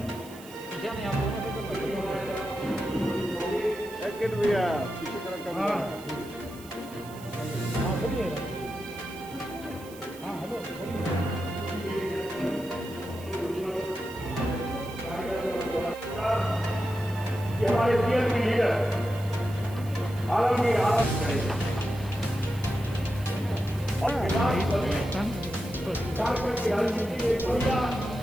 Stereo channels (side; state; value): right; noise; hiss, 20 dB below the sound